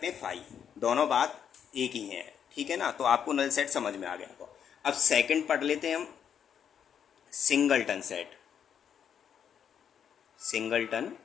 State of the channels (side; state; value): right; quieter; 8.3 dB